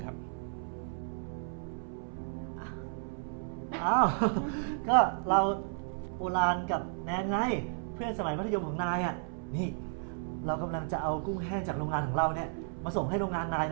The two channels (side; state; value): left; silent; 56 dB below the other